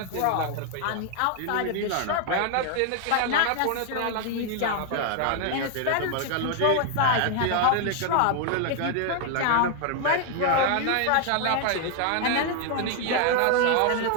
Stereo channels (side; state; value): both; different; correlation 0.00